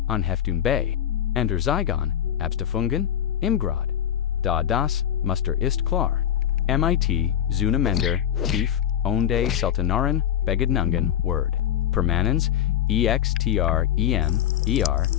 Anheftung bei, andere zeigen Abstufungen im Grad. Da das Muster ist klar. MIT zueinander tief onde seltenaren Begegnungen word. Permanens, extrem,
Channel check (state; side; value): quieter; right; 10.3 dB